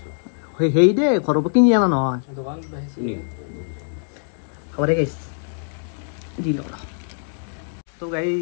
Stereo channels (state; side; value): silent; right; digital silence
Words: সেই দে ঘৰৰ পৰা কিনি অনা নহয় হ'ব দে গাইছ দি লওঁ তো